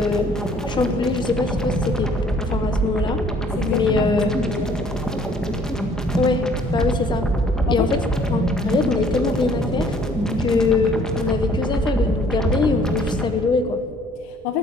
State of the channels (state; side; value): normal; both; correlation 0.58